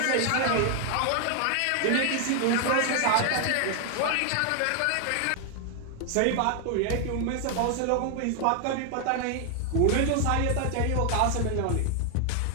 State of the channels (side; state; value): both; different; correlation 0.00